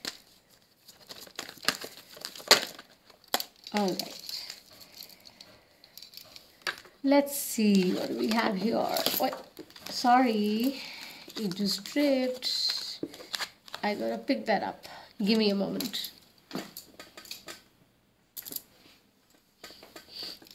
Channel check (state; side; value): identical; both; correlation 1.00